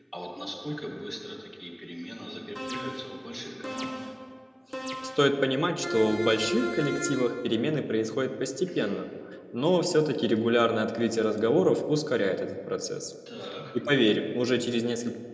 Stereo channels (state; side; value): identical; both; correlation 1.00